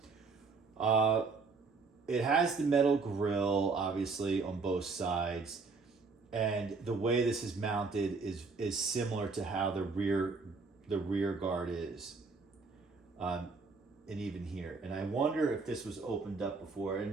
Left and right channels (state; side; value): quieter; left; 4.4 dB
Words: It has the metal grill, obviously, on both sides. And the way this is mounted is similar to how the rear guard is. And even here. And I wonder if this was opened up before.